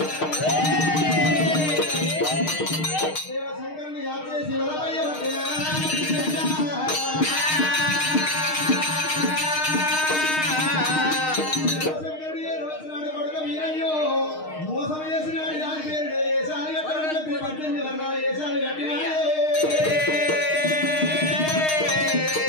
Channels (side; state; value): right; late; 6.5 ms